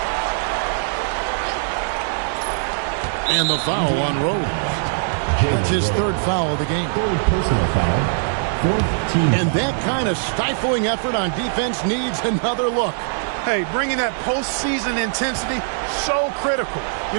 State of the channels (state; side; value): silent; left; digital silence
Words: And the foul on Rose. That's his 3rd foul of the game. Personal foul. 4th team. And that kind of stifling effort on defense needs another look. Hey, bringing that postseason intensity, so critical. You